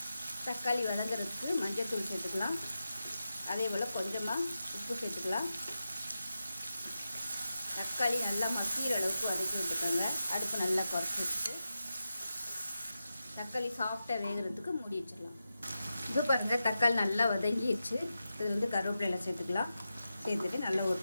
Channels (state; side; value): inverted; both; correlation -0.91